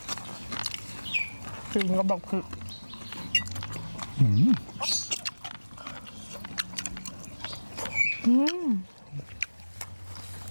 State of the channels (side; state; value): both; inverted; correlation -1.00